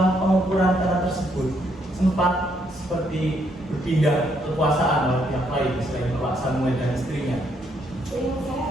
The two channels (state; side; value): normal; both; correlation 0.73